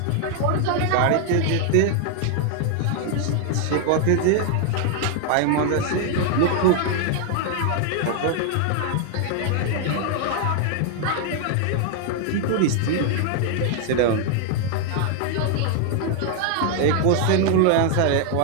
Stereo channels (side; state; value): both; different; correlation 0.00